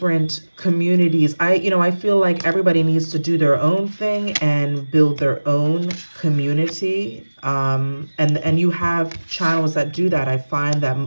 communities. I feel like everybody needs to do their own thing and build their own community. And you have channels that do that. I find that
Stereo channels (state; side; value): inverted; both; correlation -1.00